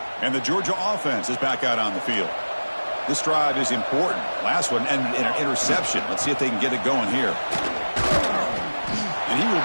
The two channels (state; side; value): inverted; both; correlation -1.00